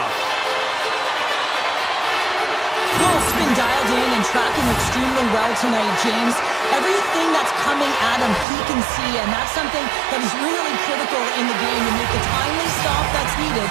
Wolf's been dialed in and tracking extremely well tonight, James. Everything that's coming at him, he can see, and that's something that is really critical in the game to make the timely stop that's needed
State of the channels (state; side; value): drops out; left; at 8.5 s